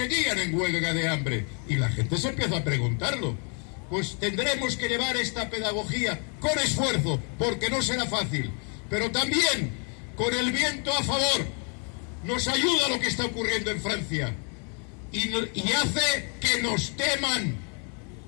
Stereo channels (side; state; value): right; quieter; 39.6 dB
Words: en huelga de hambre? Y la gente se empieza a preguntarlo. Pues tendremos que llevar esta pedagogía con esfuerzo, porque no será fácil, pero también con el viento a favor. Nos ayuda lo que está ocurriendo en Francia y hace que nos teman.